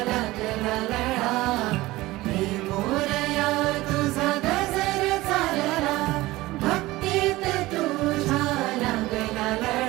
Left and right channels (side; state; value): left; quieter; 18.7 dB